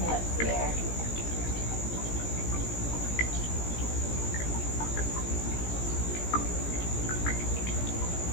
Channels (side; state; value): right; late; 17 ms